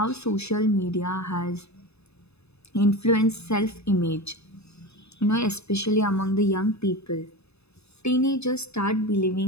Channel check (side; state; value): right; late; 0.79 ms